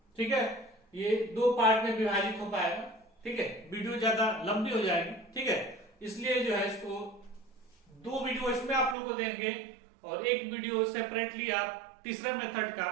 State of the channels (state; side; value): drops out; left; at 9.0 s